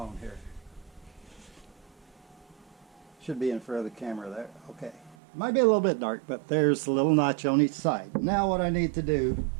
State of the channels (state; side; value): drops out; left; at 5.2 s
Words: here. Should be in front of the camera there. Okay. Might be a little bit dark, but there's a little notch on each side. Now what I need to do